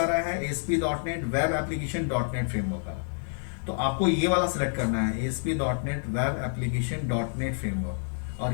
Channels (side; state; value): right; silent; 59 dB below the other